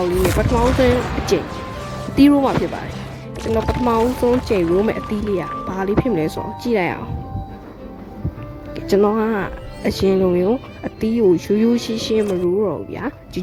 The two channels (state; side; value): identical; both; correlation 1.00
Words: င့်လေးနဲ့ပထမဦးဆုံးအကျင့်အသီးရိုးမှာဖြစ်ပါတယ်ကျွန်တော်ပထမဦးဆုံးကျင့်ရိုးမဲ့အသီးလေးကဘာလေးဖြစ်မလဲဆိုတော့ကြည့်လိုက်အောင်ကျွန်တော်ကအရင်လိုမျိုးအသီးကိုရိုးရိုးရှင်းရှင်းမရိုးတော့ဘူးဗျာဂျူ